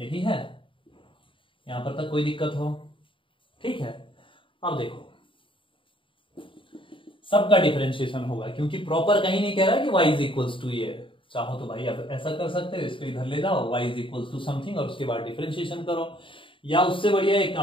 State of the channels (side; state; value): right; late; 0.25 ms